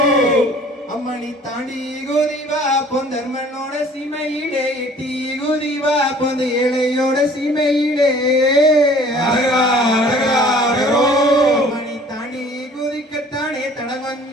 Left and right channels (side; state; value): both; normal; correlation 0.52